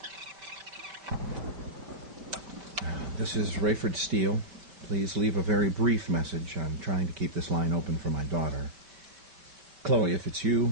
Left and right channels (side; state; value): left; late; 5.2 ms